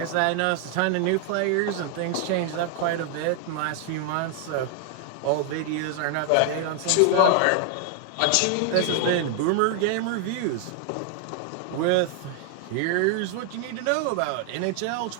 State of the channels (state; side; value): different; both; correlation 0.00